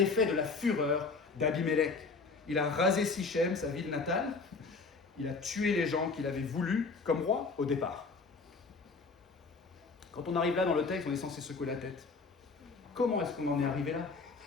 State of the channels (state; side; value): quieter; right; 4.2 dB